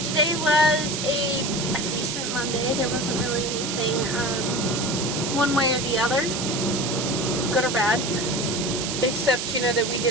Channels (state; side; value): noise; right; hiss, 3 dB below the sound